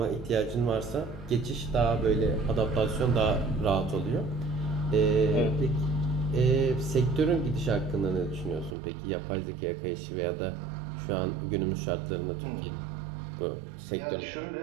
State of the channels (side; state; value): left; drops out; at 8.8 s